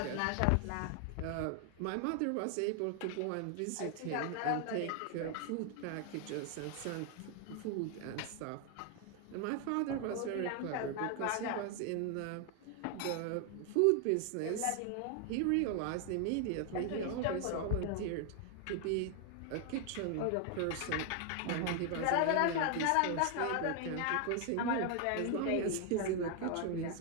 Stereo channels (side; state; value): both; different; correlation 0.00